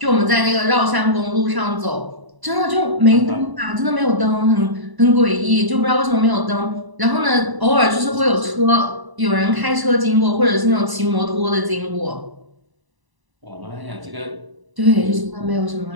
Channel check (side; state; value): left; late; 1.0 ms